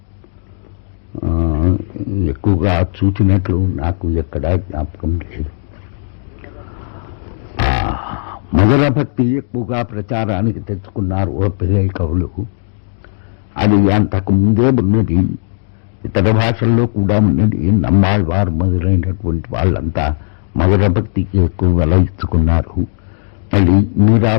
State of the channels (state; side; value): silent; right; digital silence